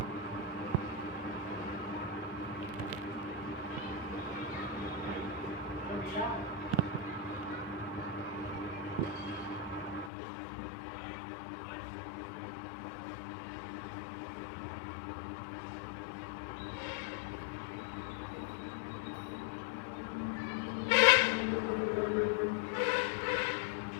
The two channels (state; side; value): drops out; right; at 10.1 s